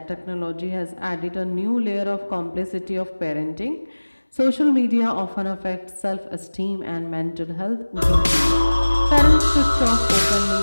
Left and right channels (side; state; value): both; inverted; correlation -1.00